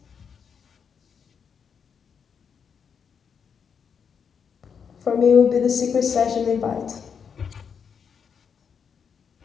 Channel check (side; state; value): right; quieter; 6.8 dB